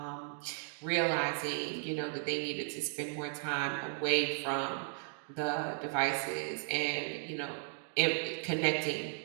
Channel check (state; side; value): silent; left; 54 dB below the other